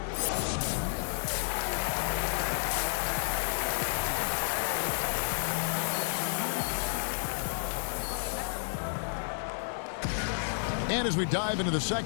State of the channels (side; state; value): right; silent; digital silence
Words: And as we dive into the